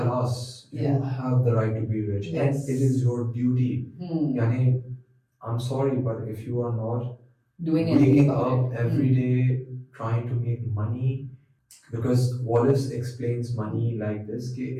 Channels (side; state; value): both; identical; correlation 1.00